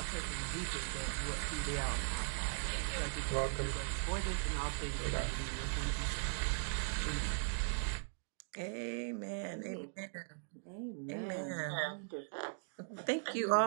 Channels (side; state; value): left; silent; digital silence